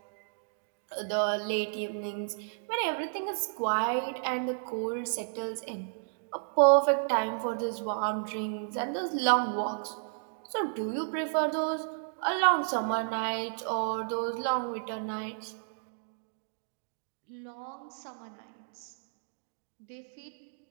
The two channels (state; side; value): silent; left; digital silence